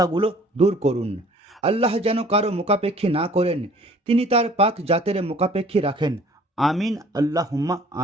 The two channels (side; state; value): both; normal; correlation 0.53